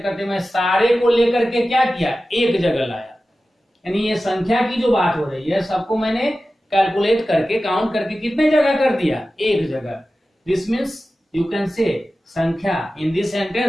करते मैं सारे को लेकर के क्या किया, एक जगह लाया। यानी ये संख्या की जो बात हो रही है सबको मैंने कैलकुलेट करके, काउंट करके कितने जगह कर दिया, एक जगह। दिस मीन्स यू कैन से संख्या in this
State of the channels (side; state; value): both; normal; correlation 0.95